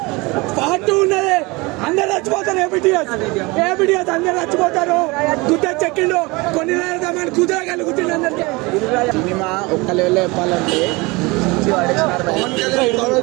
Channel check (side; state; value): left; quieter; 24.7 dB